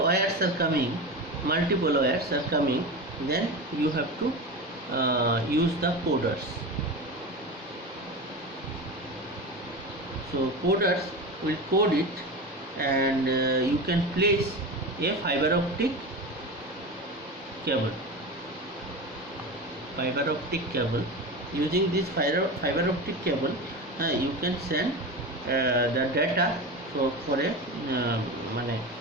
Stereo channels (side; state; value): both; normal; correlation 0.25